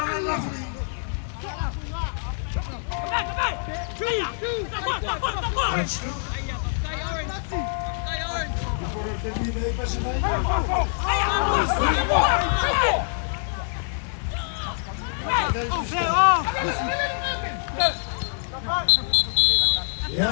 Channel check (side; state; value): right; silent; digital silence